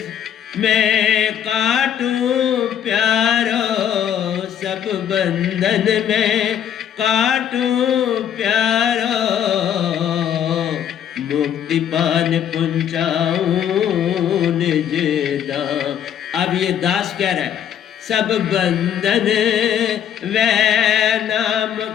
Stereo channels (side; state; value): right; quieter; 9.3 dB